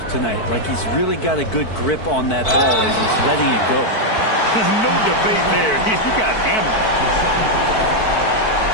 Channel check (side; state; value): right; late; 4.5 ms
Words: tonight. Like he's really got a good grip on that ball as he's letting it go. No debate there. He got hammered.